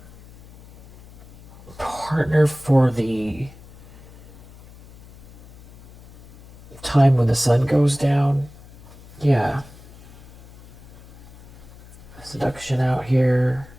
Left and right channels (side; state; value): left; noise; hum, 21 dB below the sound